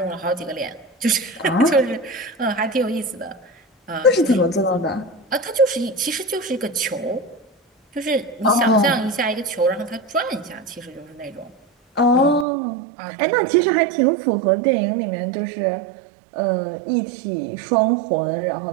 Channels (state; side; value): drops out; left; at 12.5 s